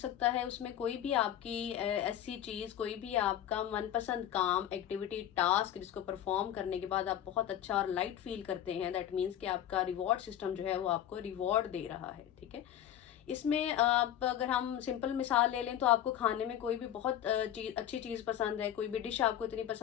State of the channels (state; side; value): quieter; right; 11.0 dB